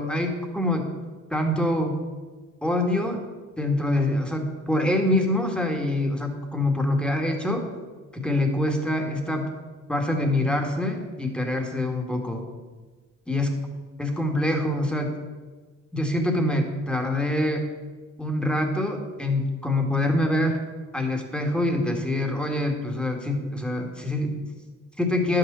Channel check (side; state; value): both; normal; correlation 0.61